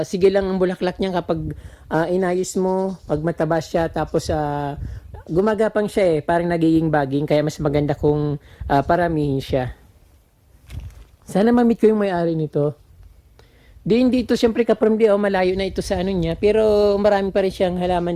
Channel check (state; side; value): identical; both; correlation 1.00